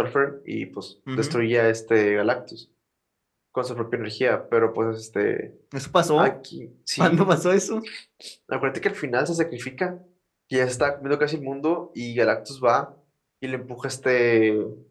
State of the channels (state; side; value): identical; both; correlation 1.00